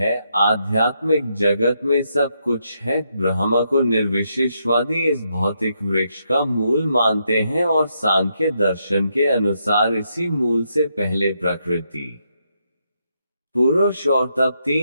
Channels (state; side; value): inverted; both; correlation -0.79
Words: आध्यात्मिक जगत में सब कुछ है। ब्रह्म को निर्विशेषवादी इस भौतिक वृक्ष का मूल मानते हैं और सांख्य दर्शन के अनुसार इसी मूल से पहले प्रकृति, पुरुष और तब